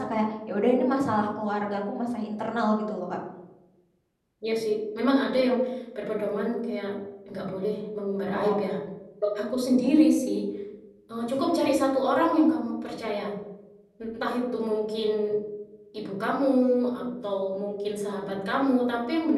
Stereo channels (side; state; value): both; identical; correlation 1.00